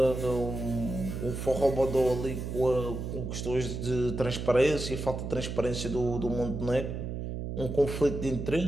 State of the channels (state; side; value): noise; right; hum, 5 dB below the sound